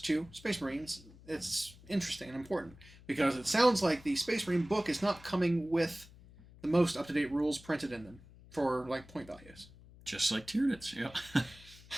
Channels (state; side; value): noise; left; hum, 21 dB below the sound